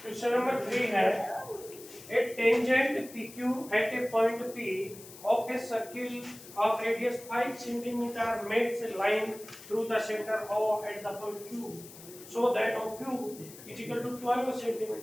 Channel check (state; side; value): noise; left; hiss, 17 dB below the sound